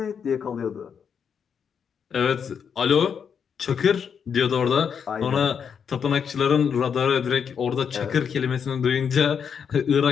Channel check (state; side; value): quieter; right; 7.1 dB